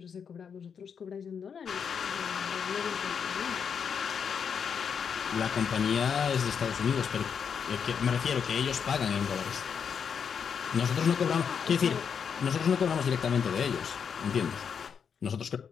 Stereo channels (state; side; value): quieter; right; 6.9 dB